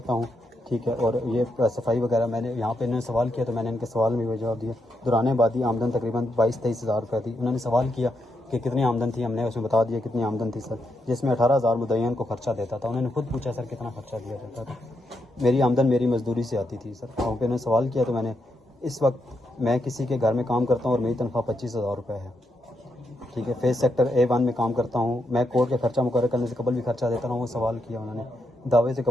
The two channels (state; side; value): normal; both; correlation 0.81